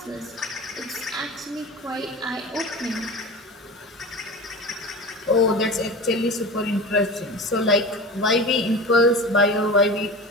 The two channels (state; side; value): normal; both; correlation 0.32